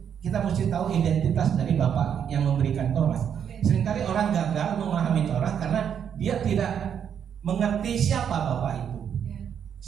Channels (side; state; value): left; quieter; 8.3 dB